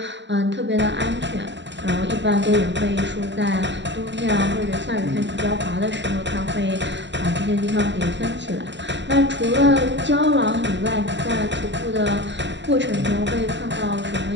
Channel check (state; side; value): late; left; 0.52 ms